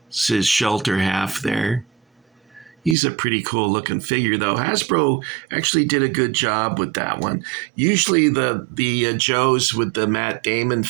It's his shelter half there. He's a pretty cool looking figure, though. Hasbro actually did a good job with that one. Usually the Joes with the Matt Damon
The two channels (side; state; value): left; drops out; at 3.0 s